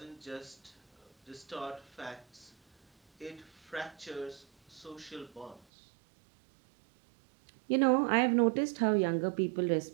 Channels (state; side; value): drops out; left; at 5.7 s